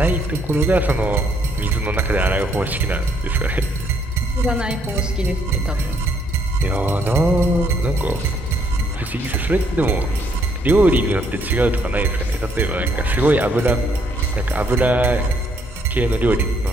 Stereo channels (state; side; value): normal; both; correlation 0.70